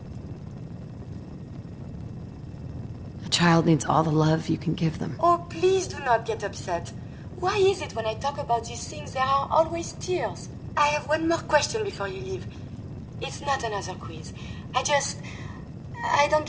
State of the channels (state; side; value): identical; both; correlation 1.00